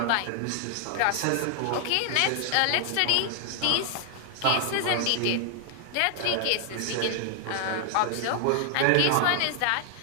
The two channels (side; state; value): both; different; correlation 0.00